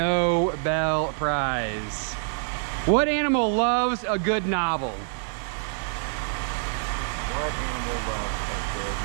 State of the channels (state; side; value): silent; left; digital silence